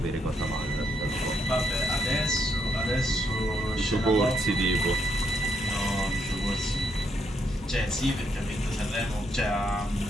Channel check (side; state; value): both; normal; correlation 0.76